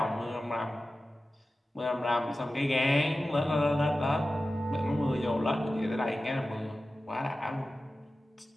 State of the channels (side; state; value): both; normal; correlation 0.95